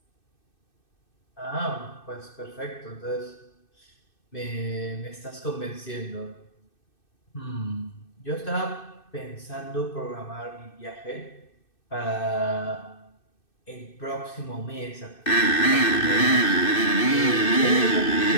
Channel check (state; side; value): late; right; 2.6 ms